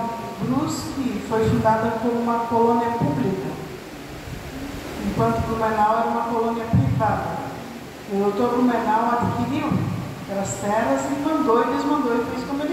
Brusque foi fundada como uma colônia pública, enquanto Blumenau era uma colônia privada. O doutor Blumenau adquiriu aquelas terras e desmandou e fez como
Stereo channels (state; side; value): identical; both; correlation 1.00